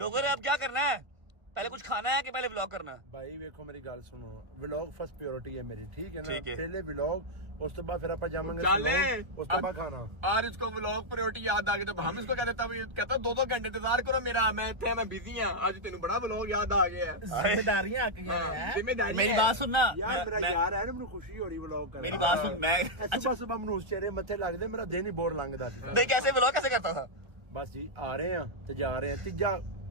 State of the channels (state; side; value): late; left; 1.0 ms